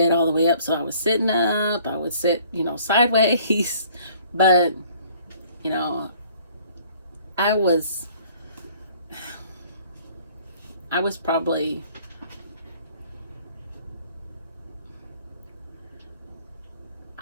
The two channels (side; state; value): both; inverted; correlation -0.57